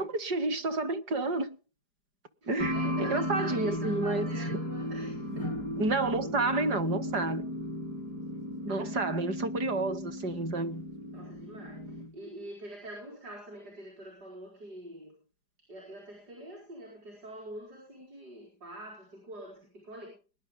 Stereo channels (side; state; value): left; late; 4.9 ms